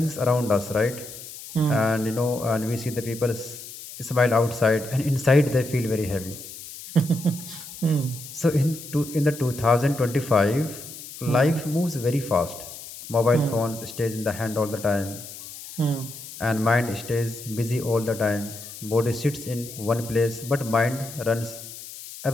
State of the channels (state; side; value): noise; left; hiss, 13 dB below the sound